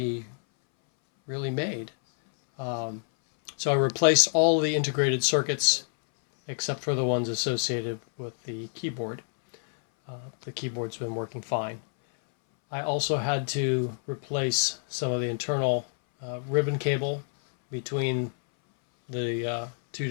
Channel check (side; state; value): right; silent; 60 dB below the other